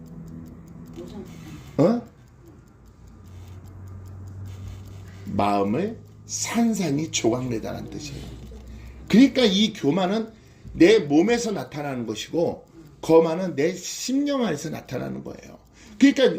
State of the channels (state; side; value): identical; both; correlation 1.00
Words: 마음을 산산이 조각내다라는 뜻이에요. 그러니까 이 교만은 내 몸에서 나타나는 것이고 거만은 내 심령 안에서 나타나는 거예요.